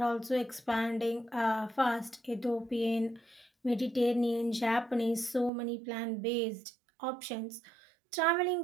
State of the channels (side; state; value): left; drops out; at 5.5 s